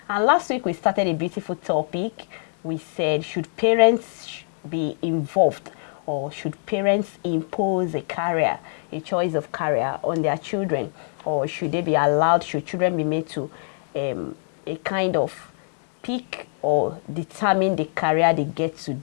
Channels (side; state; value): right; silent; digital silence